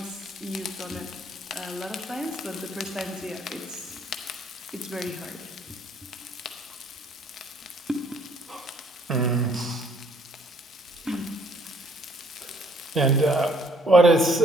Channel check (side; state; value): both; normal; correlation 0.63